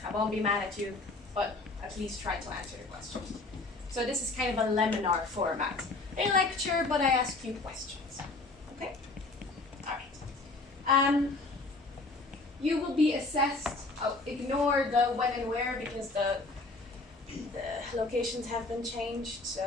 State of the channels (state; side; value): quieter; right; 3.3 dB